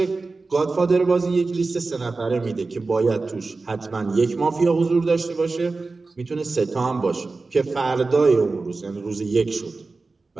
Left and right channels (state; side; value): quieter; left; 3.8 dB